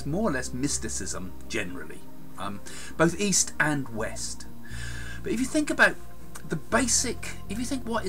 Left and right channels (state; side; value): identical; both; correlation 1.00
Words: more or less mysticism generally, both East and West. But if you think about what